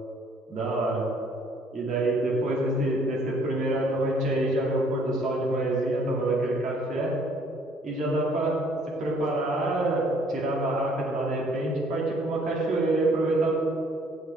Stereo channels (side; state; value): both; normal; correlation 0.61